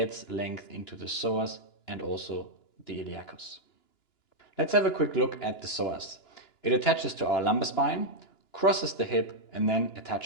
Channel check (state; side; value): late; right; 2.9 ms